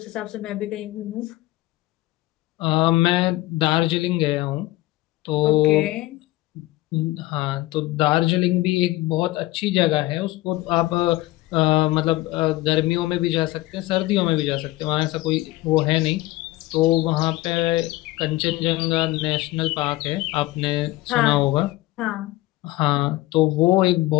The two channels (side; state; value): right; quieter; 18.4 dB